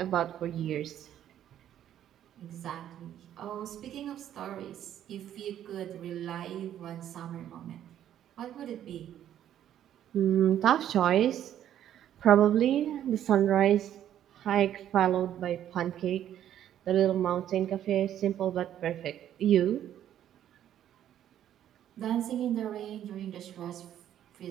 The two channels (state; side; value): quieter; left; 10.9 dB